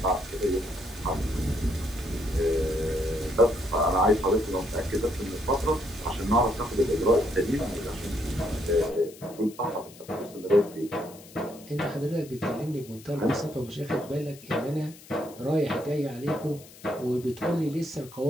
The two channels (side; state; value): left; noise; hiss, 20 dB below the sound